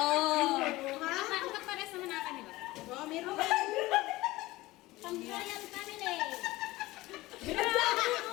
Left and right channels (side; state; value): right; quieter; 19.0 dB